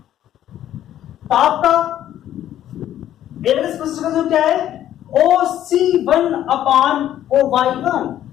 तो आपका एवरेज प्रोपेंसिटी टू कंज्यूम क्या है? OC1 upon OY1।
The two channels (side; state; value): right; quieter; 11.8 dB